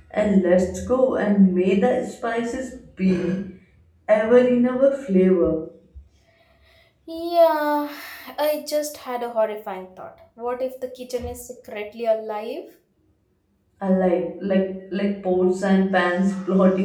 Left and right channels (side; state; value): both; identical; correlation 1.00